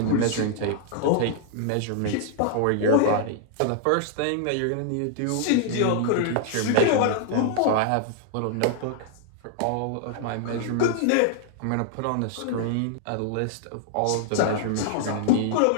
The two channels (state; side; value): different; both; correlation -0.01